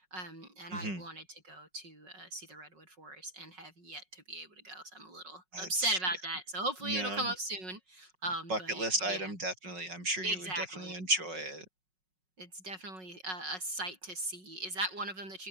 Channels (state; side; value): late; left; 5.4 ms